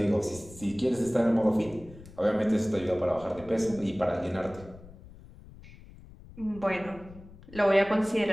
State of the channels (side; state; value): left; noise; rumble, 19 dB below the sound